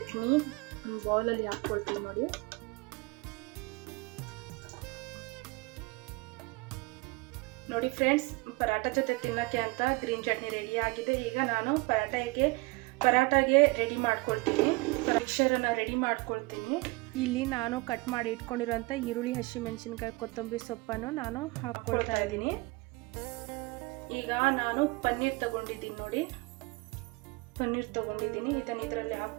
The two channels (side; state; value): left; quieter; 24.9 dB